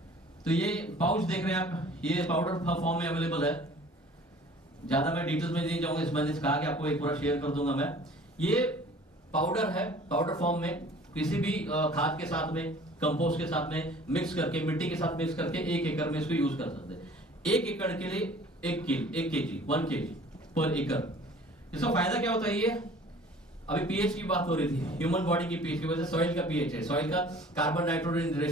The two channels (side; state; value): both; normal; correlation 0.49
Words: तो ये पाउच देख रहे हैं आप, ये पाउडर फॉर्म में अवेलेबल है। ज्यादा मैं डिटेल्स में नहीं जाऊंगा, मैंने कहा कि आपको एक पूरा शेयर कर दूंगा मैं। ये पाउडर है, पाउडर फॉर्म में, किसी भी खाद के साथ में, कंपोस्ट के साथ में मिक्स करके, मिट्टी के साथ मिक्स करके 1 एकड़ में इसको यूज कर सकते हैं। 1 एकड़ के लिए 1 केजी 1 केजी पर एकड़। इसका फायदा क्या होता है? ये अभी पीएच की बात हो रही थी, ह्यूमन बॉडी की पीएच की वजह से सॉइल का पीएच है, सॉइल का कार्बन नाइट्रोजन